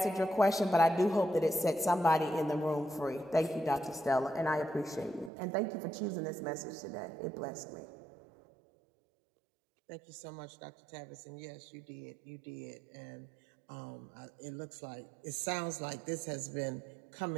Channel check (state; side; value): drops out; left; at 5.3 s